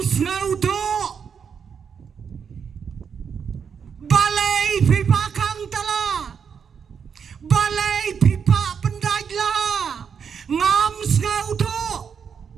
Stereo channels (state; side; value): quieter; left; 6.8 dB